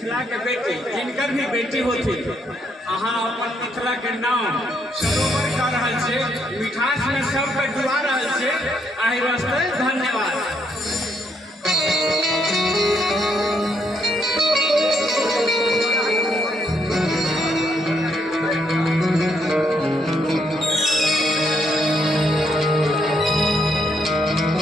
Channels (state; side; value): normal; both; correlation 0.74